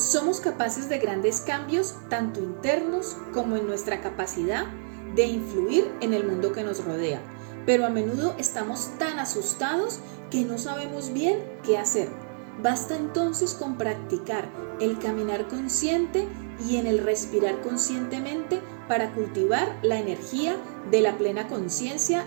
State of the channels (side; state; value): left; silent; 60 dB below the other